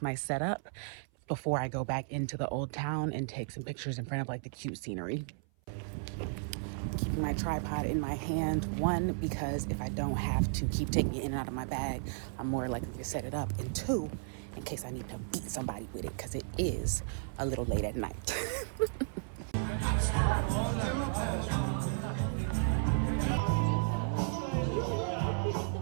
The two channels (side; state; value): left; silent; 55 dB below the other